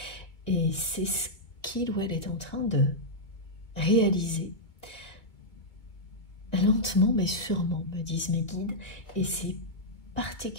Et c'est ce qu'il ou elle est en train de réaliser. Lentement mais sûrement, me disent mes guides, et c'est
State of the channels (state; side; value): late; right; 2.1 ms